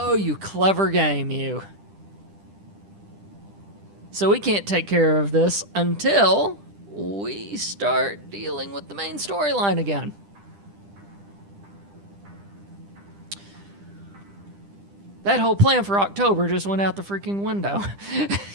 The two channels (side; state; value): left; late; 10 ms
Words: you clever game, you. So we can't take care of this until we start dealing with the main storyline again. That whole plan for October just went out the freaking window.